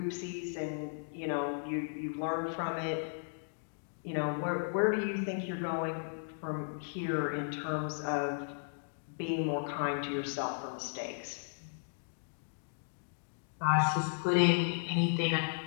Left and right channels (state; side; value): silent; right; digital silence